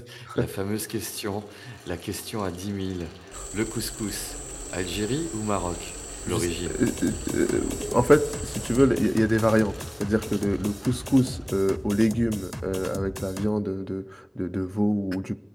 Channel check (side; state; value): both; identical; correlation 1.00